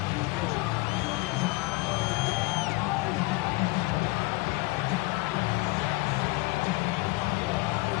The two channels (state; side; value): quieter; right; 22.5 dB